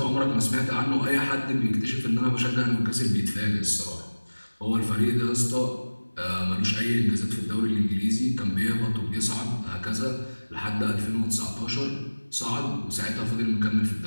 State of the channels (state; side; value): inverted; both; correlation -1.00